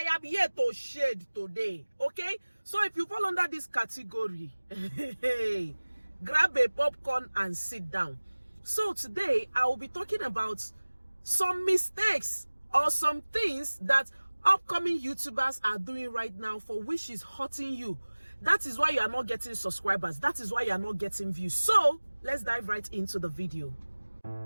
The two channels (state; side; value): inverted; both; correlation -1.00